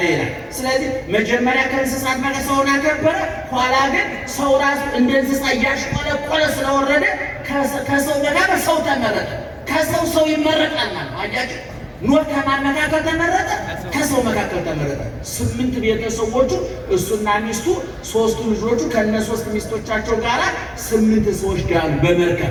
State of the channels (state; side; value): identical; both; correlation 1.00